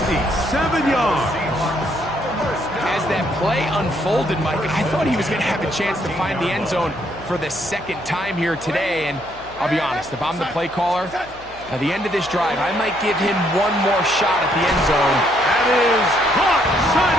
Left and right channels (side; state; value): left; noise; hum, 22 dB below the sound